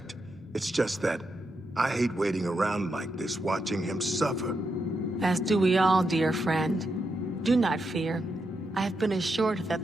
It's just that I hate waiting around like this, watching him suffer. As do we all, dear friend. Do not fear. I have been assured that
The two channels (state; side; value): normal; both; correlation 0.83